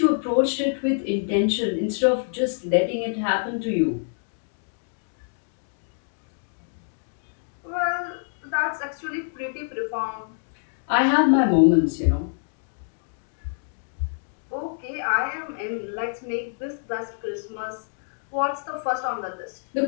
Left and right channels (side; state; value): right; silent; digital silence